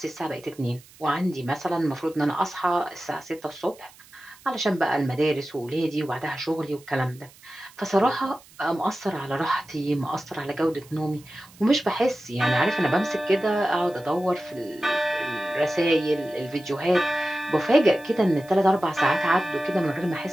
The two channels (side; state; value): right; noise; hiss, 24 dB below the sound